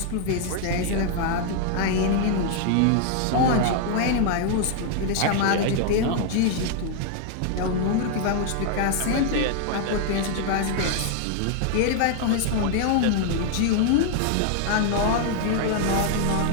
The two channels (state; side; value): different; both; correlation 0.00